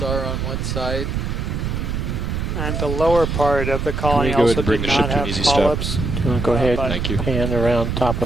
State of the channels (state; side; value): noise; right; rumble, 2 dB below the sound